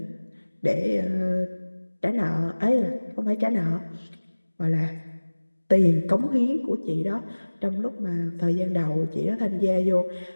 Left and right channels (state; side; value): inverted; both; correlation -1.00